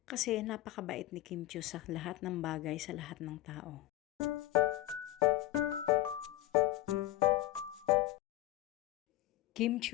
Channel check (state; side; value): quieter; right; 15.6 dB